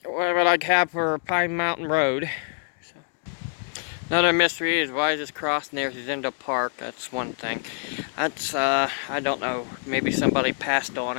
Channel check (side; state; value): right; silent; 61 dB below the other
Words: what I have for Pine Mountain Road. So. Another mystery is why is this cross near Zindel Park? That's one thing. That's I don't know. Maybe somebody passed on